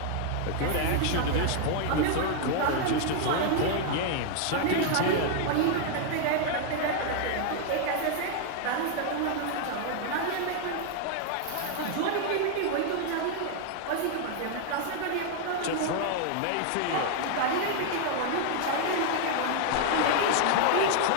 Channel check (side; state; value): both; different; correlation 0.00